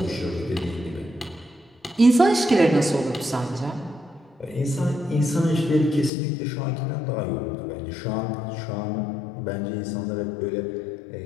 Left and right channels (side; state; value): right; drops out; at 6.1 s